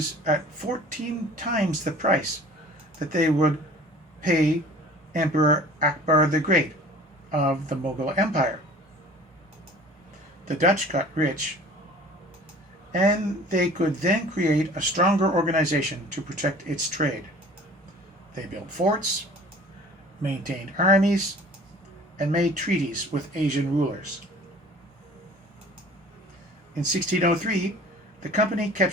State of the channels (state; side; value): normal; both; correlation 0.46